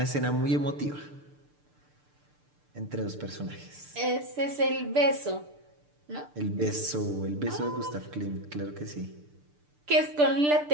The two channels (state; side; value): late; left; 6.8 ms